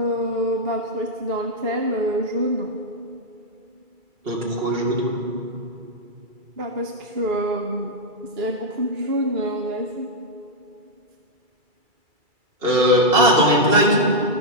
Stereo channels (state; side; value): late; left; 2.3 ms